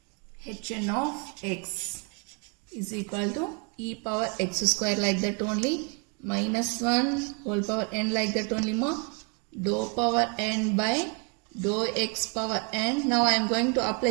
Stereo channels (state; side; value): quieter; left; 34.3 dB